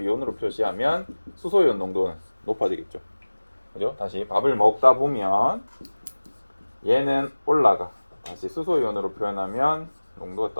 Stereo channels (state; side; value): inverted; both; correlation -1.00